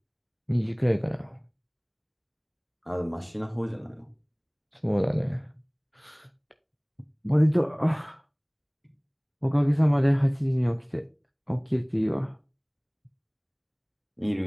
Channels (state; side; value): identical; both; correlation 1.00